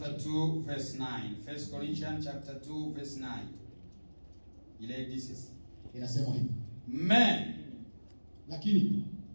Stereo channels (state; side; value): inverted; both; correlation -1.00